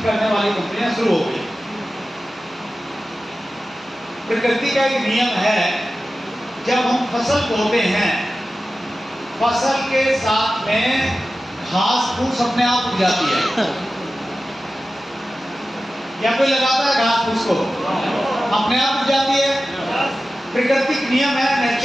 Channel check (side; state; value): both; normal; correlation 0.94